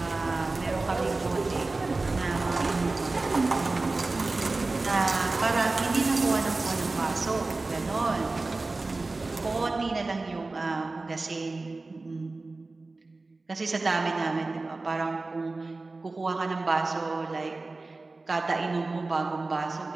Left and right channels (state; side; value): quieter; left; 3.4 dB